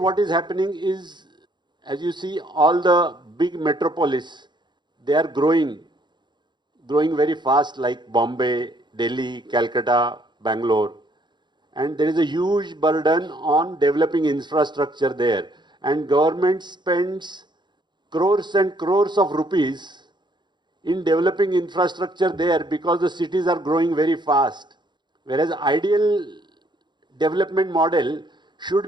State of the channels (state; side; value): late; left; 0.22 ms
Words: is happening is, as you see, all the big metropolis, they are growing very fast, like Bombay, Delhi, Calcutta, Bangalore. And there is a huge burden on developing infrastructure there. And government spends crores and crores of rupees in developing infrastructure there because the cities are growing very fast. Whereas ideal development model